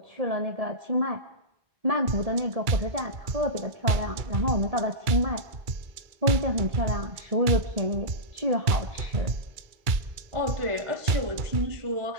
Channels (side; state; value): left; late; 2.3 ms